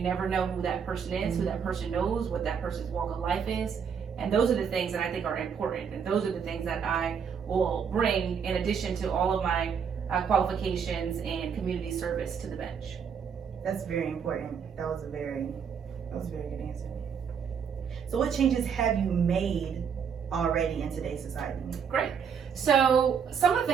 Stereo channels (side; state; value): left; quieter; 6.9 dB